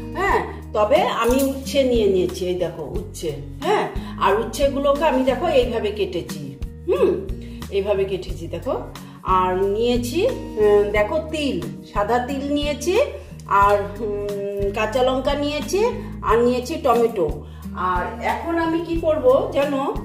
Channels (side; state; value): both; identical; correlation 1.00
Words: হ্যাঁ। তবে আমি উচ্ছে নিয়ে নিয়েছি, এই দেখো উচ্ছে, হ্যাঁ। আর উচ্ছেগুলোকে আমি দেখো এইভাবে কেটেছি, এইভাবে কেটেছি দেখো। আর নিয়েছি দেখো তিল, সাদা তিল নিয়েছি, আর কাঁচা লঙ্কা নিয়েছি, আর নিয়েছি টমেটো। আর এখন আমি কি করব যেন,